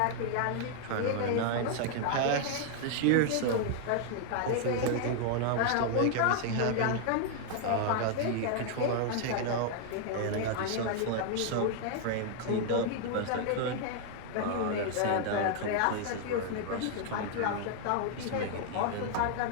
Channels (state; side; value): different; both; correlation 0.00